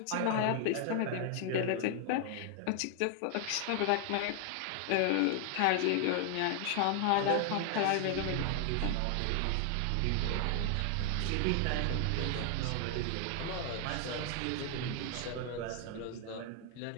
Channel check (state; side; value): different; both; correlation 0.00